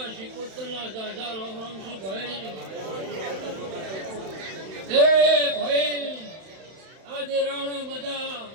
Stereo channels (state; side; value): late; left; 31 ms